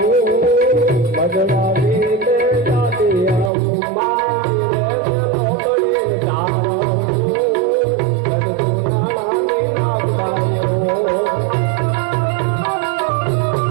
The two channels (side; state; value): left; drops out; at 3.5 s